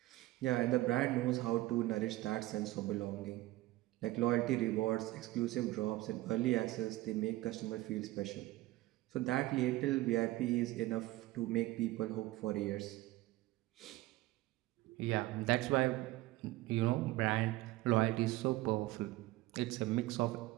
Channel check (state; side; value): quieter; left; 17.9 dB